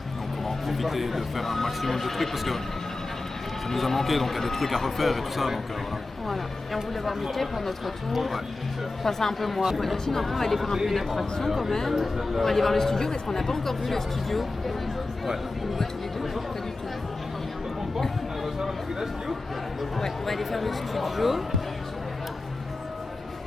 on va en profiter de faire un maximum de trucs parce que ça nous a manqué, donc il y a des trucs à refaire et tout ça, donc voilà. Voilà, et on voulait voir Mickey pour notre tour. Ouais. Enfin c'est un peu moi. Voilà, sinon après on va aller faire un peu d'attraction quand même. On va aller voir le studio parce qu'on n'a pas encore vu le studio. Ouais. On le voit tous les deux, pas du tout. Ouais, on va aller faire le studio.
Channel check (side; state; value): right; quieter; 3.2 dB